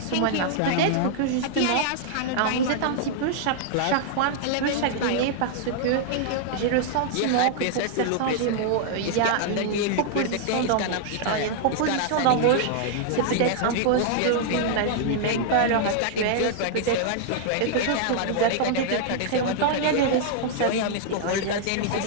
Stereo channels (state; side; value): different; both; correlation -0.01